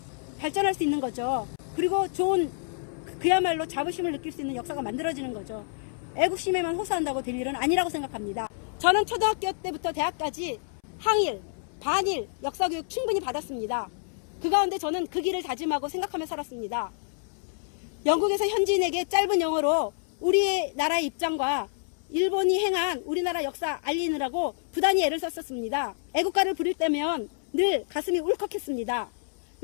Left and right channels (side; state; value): right; silent; 59 dB below the other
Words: 발전할 수 있는 거죠. 그리고 좋은 그야말로 자부심을 느낄 수 있는 역사가 만들어지는 거죠. 애국심에만 호소한다고 될 일은 아니라고 생각합니다. 저는 초등학교 때부터 대학까지 항일, 반일 역사교육 충분히 받았습니다. 그 가운데 저는 그 길을 다짐하고 생각하며 살았습니다. 영국에서 현지인에게 짧은 영어로 우리의 나라의 입장과 일본이 행한 우리나라 역사 알리느라고 부단히 애를 썼었습니다. 애국가를 부를 때면 늘 가슴이 울컥했습니다.